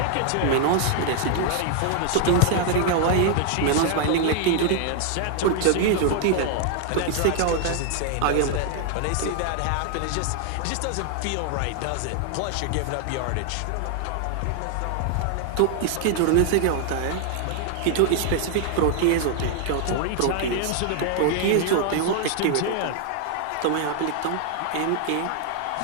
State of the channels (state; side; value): different; both; correlation 0.00